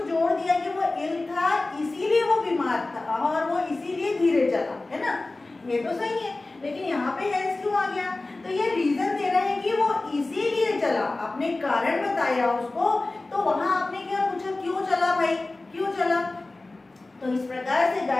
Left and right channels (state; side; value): quieter; right; 3.1 dB